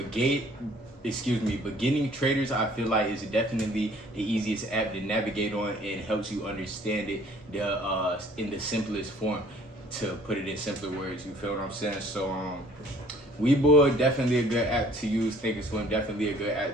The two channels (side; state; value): both; normal; correlation 0.56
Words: traders, I feel like it's definitely the easiest app to navigate on and helps you understand it in the simplest form, to put it in simpler words. You feel what I'm saying? So, Webull, definitely a good app to use. Thinkorswim, definitely a good app